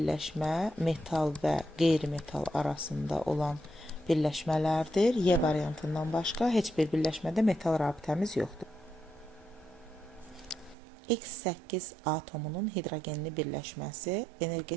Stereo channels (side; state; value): left; drops out; at 10.8 s